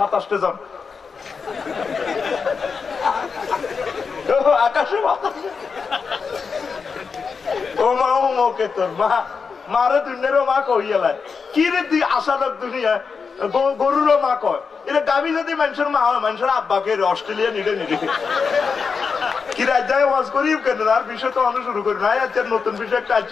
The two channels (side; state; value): right; quieter; 5.4 dB